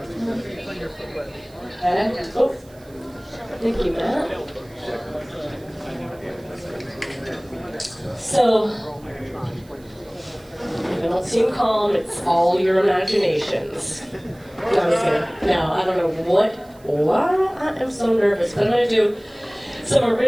thank you, Matt. So, if I don't seem calm, it's all your imaginations. No, I'm just kidding. No, I don't know why I am so nervous, but I'm going to do some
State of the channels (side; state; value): right; noise; hiss, 28 dB below the sound